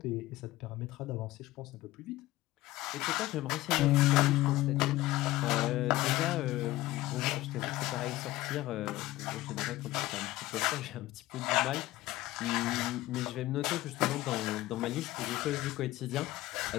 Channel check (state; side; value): quieter; right; 17.3 dB